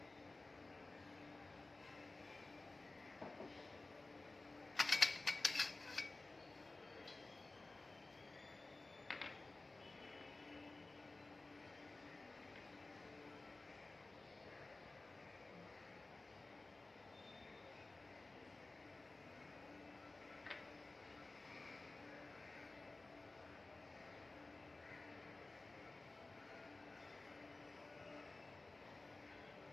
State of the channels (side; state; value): right; quieter; 3.2 dB